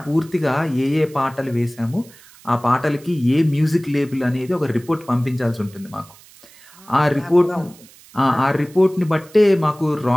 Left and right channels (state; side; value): noise; right; hiss, 24 dB below the sound